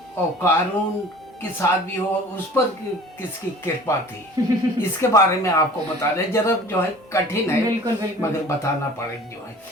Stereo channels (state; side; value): normal; both; correlation 0.45